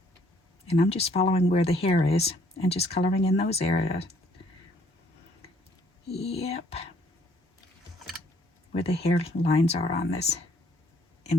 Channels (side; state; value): both; normal; correlation 0.64